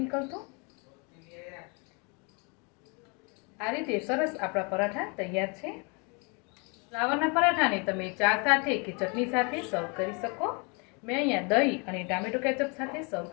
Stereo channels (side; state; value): right; quieter; 32.7 dB